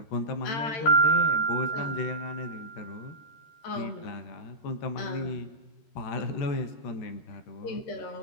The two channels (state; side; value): late; right; 13 ms